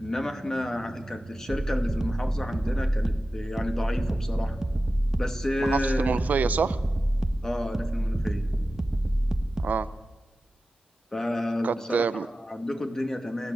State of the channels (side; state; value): both; normal; correlation 0.94